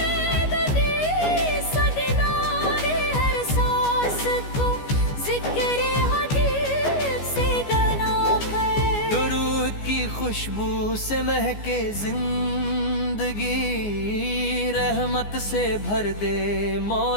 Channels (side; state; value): right; late; 14 ms